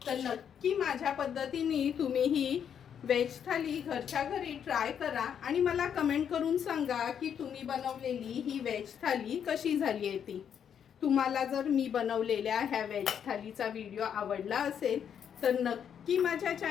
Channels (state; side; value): quieter; right; 8.3 dB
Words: तर नक्की माझ्या पद्धतीने तुम्ही ही व्हेज थाली घरच्या घरी ट्राय करा आणि मला कमेंट करून सांगा की तुम्ही बनवलेली ही व्हेज थाली कशी झाली आहे ती. तुम्हाला जर मी बनवलेल्या ह्या व्हेज थालीचा व्हिडिओ आवडला असेल तर नक्की माझ्या